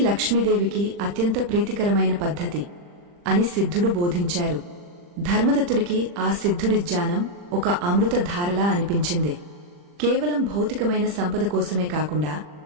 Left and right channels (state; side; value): late; left; 40 ms